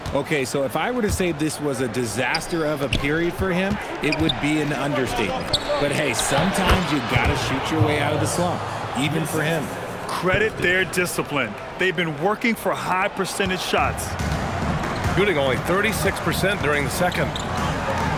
Okay, so if I were to say this was a disaster of a period for him, it would be an understatement. But hey, sometimes you gotta shoot your way out of the slump, even for him. Credit their discipline. They've been working for high percentage shots. Shooting only 36% during the second.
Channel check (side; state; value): both; identical; correlation 1.00